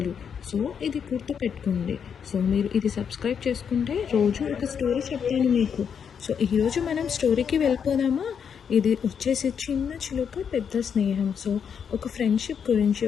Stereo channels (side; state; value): right; quieter; 7.3 dB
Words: సో ఇది గుర్తుపెట్టుకోండి. సో మీరు ఇది సబ్స్క్రైబ్ చేసుకుంటే రోజు ఒక స్టోరీ చెప్తాను మీకు. సో ఈరోజు మనం స్టోరీకి వెళ్ళిపోదామా? ఇది వచ్చేసి చిన్న చిలుక పెద్ద స్నేహం. సో ఒక ఫ్రెండ్షిప్ గురించి,